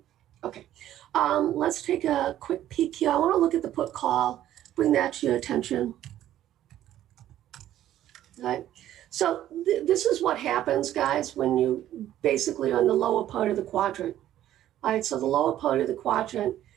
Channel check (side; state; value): left; quieter; 12.5 dB